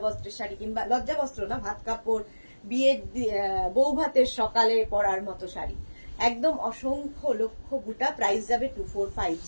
বস্ত্রের শাড়ি, কিংবা লজ্জা বস্ত্র না, ভাত কাপড়, বিয়ের বউ ভাতের সকালে পরার মতো শাড়ি। একদম অসংখ্য লক্ষ বুটা, প্রাইস যাবে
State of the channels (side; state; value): both; inverted; correlation -1.00